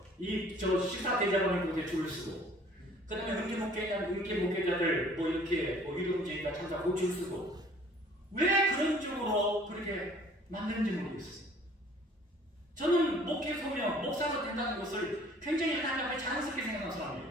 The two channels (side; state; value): both; normal; correlation 0.54